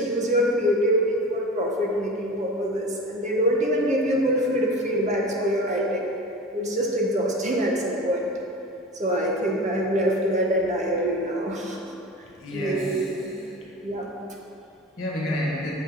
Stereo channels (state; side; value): normal; both; correlation 0.33